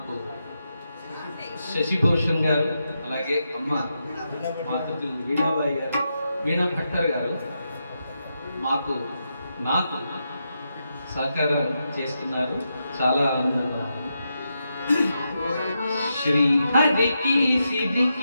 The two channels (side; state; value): both; inverted; correlation -0.85